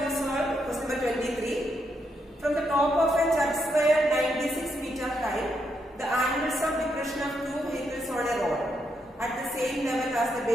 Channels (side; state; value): both; normal; correlation 0.79